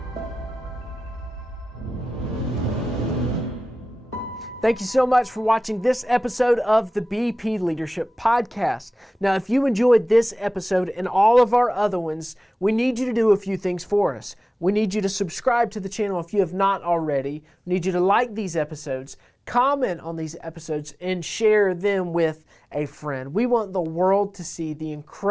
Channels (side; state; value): both; normal; correlation 0.97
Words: Thank you so much for watching this episode of the BP Leadership Podcast. Now, if you enjoyed this episode and all of our other ones, we need you to do a few things for us. We need you to subscribe to the channel if you have not already. We need you to like these episodes, comment on these episodes, and share them with a friend. We want the world to see the